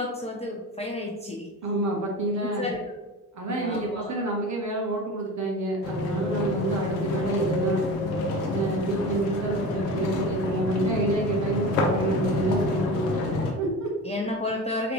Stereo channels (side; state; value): both; normal; correlation 0.32